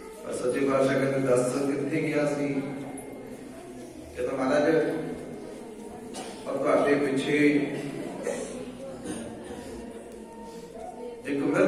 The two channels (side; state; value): both; identical; correlation 1.00